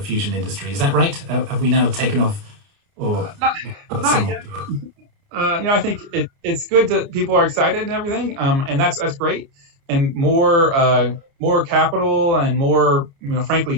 industry. Is that right? Have we now taken off, or not yet? I think it's good that people are excited and everything, and that's great. And more capital and more,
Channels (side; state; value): left; late; 30 ms